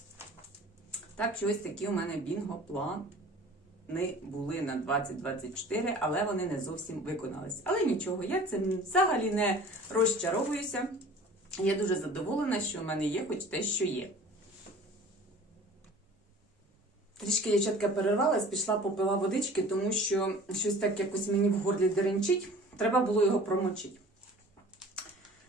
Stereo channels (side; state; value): both; normal; correlation 0.45